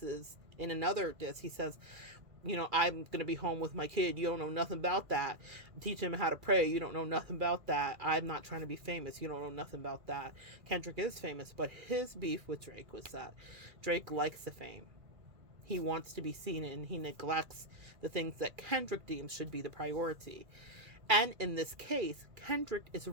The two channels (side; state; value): left; late; 2.3 ms